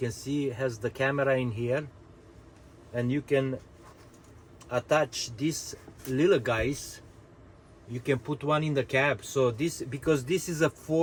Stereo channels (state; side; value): identical; both; correlation 1.00